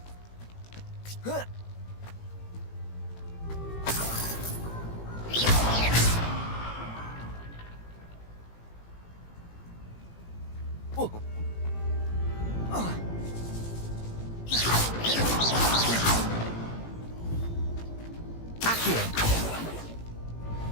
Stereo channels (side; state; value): right; late; 18 ms